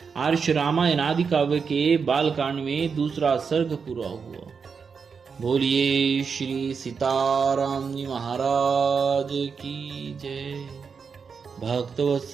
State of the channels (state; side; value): quieter; left; 5.8 dB